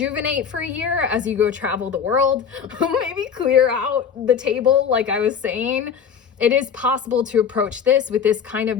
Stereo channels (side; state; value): right; quieter; 7.1 dB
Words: for a year as you go travel the world. Maybe clear out the table, like I was saying. It is possible to approach this with this kind